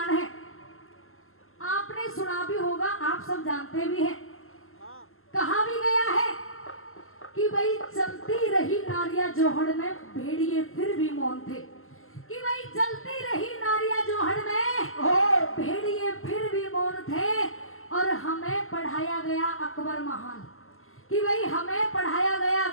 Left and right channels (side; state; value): right; late; 0.62 ms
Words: है आपने सुना भी होगा, आप सब जानते भी हैं। कहा भी गया है कि भाई चलती रही नारियां जोहड़ में भेड़िए फिर भी मौन थे, कि भाई चलती रही नारियां जोहड़ में भेड़िए फिर भी मौन थे। और हमें पढ़ाया गया अकबर महान, कि भाई हमें पढ़ाया गया